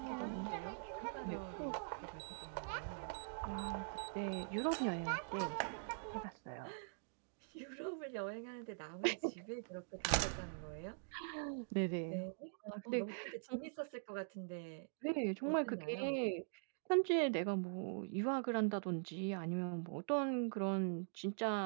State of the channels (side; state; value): left; silent; digital silence